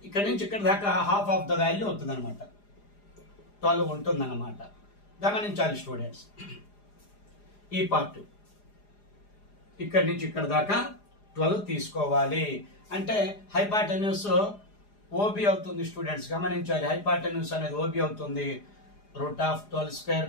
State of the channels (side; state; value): right; late; 4.9 ms